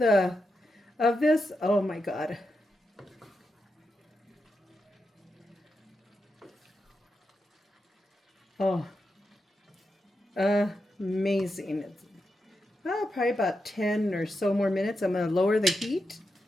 of this, oh my God. Oh, amazing. Probably about 10 or so more minutes. I'm going to lower the heat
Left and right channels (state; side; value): normal; both; correlation 0.87